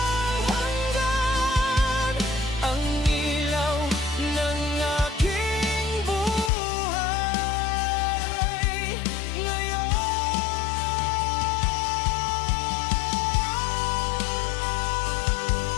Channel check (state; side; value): drops out; right; at 6.5 s